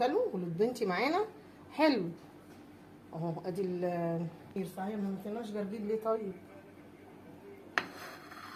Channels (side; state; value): both; identical; correlation 1.00